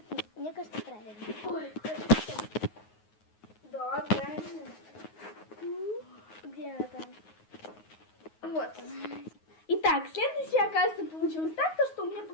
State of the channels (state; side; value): late; right; 9.5 ms